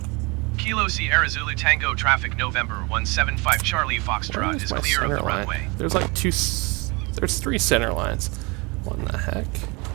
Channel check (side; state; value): left; quieter; 27.7 dB